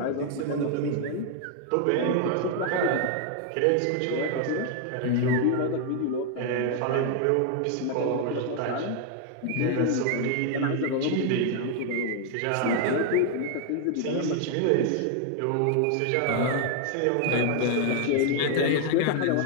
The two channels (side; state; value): both; different; correlation 0.00